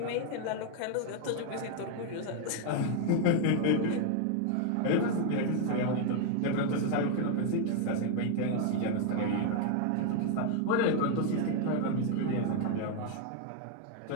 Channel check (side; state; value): both; different; correlation 0.00